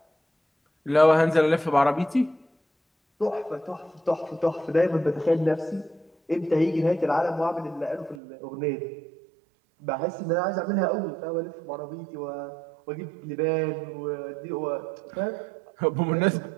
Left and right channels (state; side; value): drops out; left; at 8.2 s